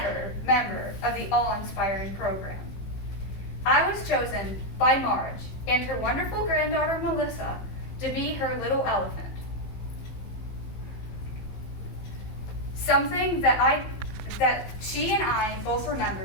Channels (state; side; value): late; right; 15 ms